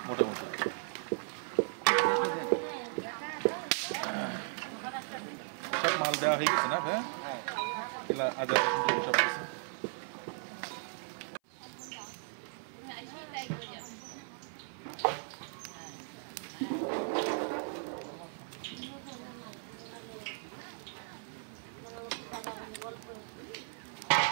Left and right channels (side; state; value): left; silent; 54 dB below the other